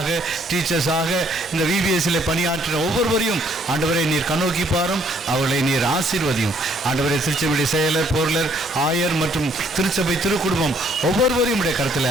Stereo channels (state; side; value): normal; both; correlation 0.65